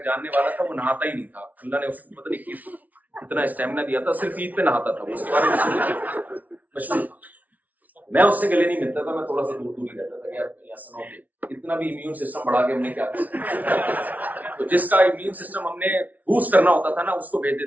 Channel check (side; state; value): left; late; 0.074 ms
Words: جاننے والا تھا, وہ نہاتا ہی نہیں تھا. اللہ نے اس کو پتہ نہیں اتنا اسٹیمنا دیا تھا, صرف عید پہ نہاتا تھا. اس کے بارے میں مشہور تھا. میں اس سے گلے نہیں ملتا تھا, میں تھوڑا سا دور ہی رہتا تھا کہ یار سنو کہ اتنا بھی امیون سسٹم بڑھا کے ہم نے کیا کیا. تو جس کا امیون سسٹم ہم نے بوسٹ کرنا ہوتا تھا نا, اس کو بھیج